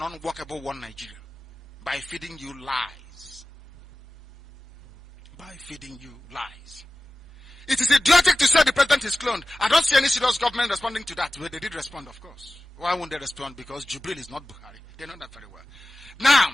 unworkable one Nigeria. By feeding you lies. By feeding you lies. It is idiotic to say the president is cloned. I don't see any serious government responding to that. Well, they did respond, of course. Why won't they respond? Because Jubril is not Buhari. They know that very well.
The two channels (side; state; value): both; normal; correlation 0.95